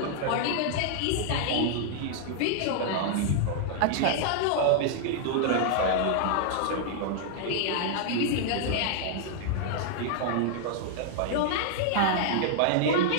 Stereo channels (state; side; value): different; both; correlation -0.01